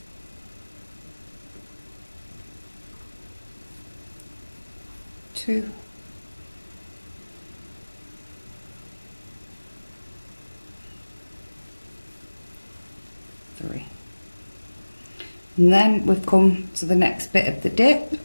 2, 3. And then we've come to the next bit of the dip.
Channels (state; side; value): inverted; both; correlation -1.00